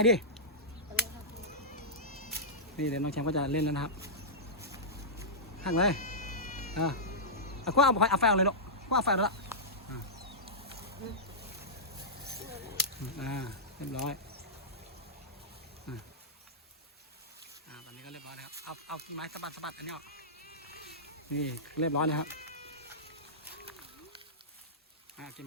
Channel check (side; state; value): both; normal; correlation -0.14